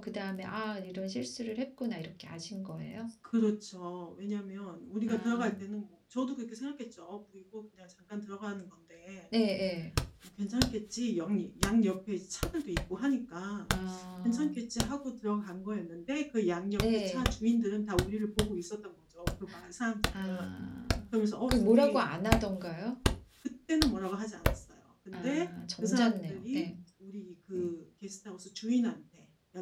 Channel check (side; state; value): both; identical; correlation 1.00